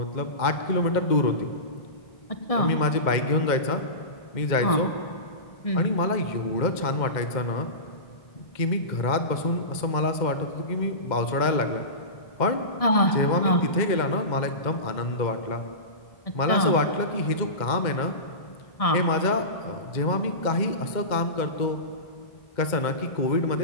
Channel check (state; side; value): late; right; 2.1 ms